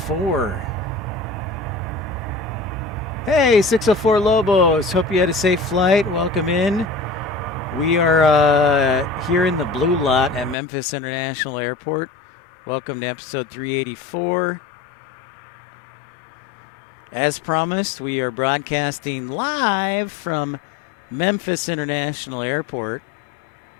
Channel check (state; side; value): drops out; right; at 10.6 s